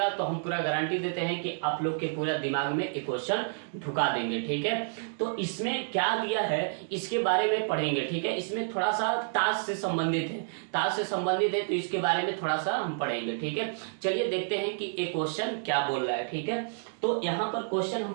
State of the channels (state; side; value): silent; left; digital silence